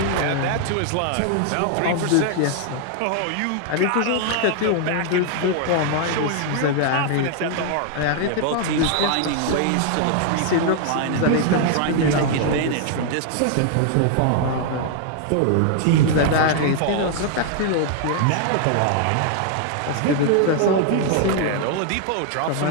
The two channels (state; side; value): different; both; correlation 0.00